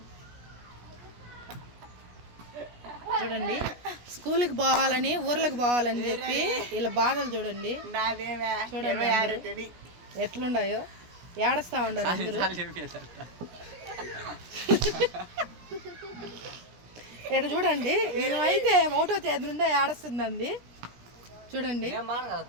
చూడండి, స్కూల్కి పోవాలని ఊర్లకు పోవాలని చెప్పి వీళ్ళ బాధలు చూడండి. చూడండి ఎట్లుండాయో, ఏడస్తా ఉండారు అందరూ. ఇక్కడ చూడండి, అయితే ఒకటో తేదీ నుండే ఏడుస్తుందండి. చూడండి,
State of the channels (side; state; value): left; late; 17 ms